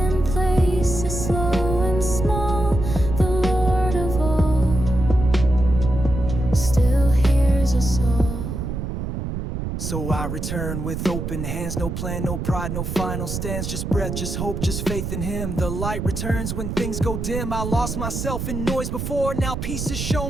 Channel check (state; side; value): noise; right; rumble, 4 dB below the sound